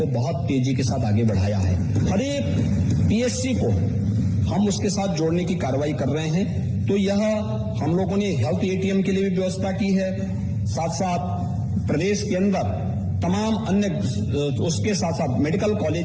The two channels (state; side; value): identical; both; correlation 1.00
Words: बहुत तेजी के साथ आगे बढ़ाया है। हर एक PSC को हम उसके साथ जोड़ने की कार्रवाई कर रहे हैं। तो यह हम लोगों ने हेल्थ ATM के लिए भी व्यवस्था की है, साथ साथ प्रदेश के अंदर तमाम अन्य उसके साथ साथ मेडिकल